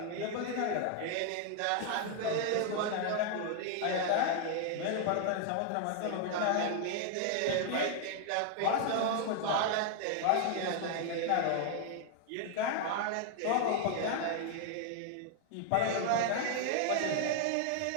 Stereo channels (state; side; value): different; both; correlation 0.00